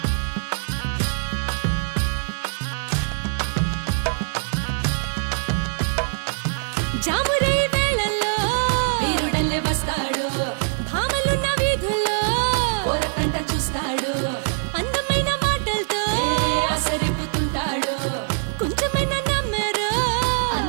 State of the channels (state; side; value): silent; left; digital silence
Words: జామురై వేళల్లో వీరుడల్లే వస్తాడు, భామలున్న వీధుల్లో ఓరకంట చూస్తాడు, అందమైన మాటలతో ఆసరిపుతుంటాడు, కొంచెమైనా నమ్మరు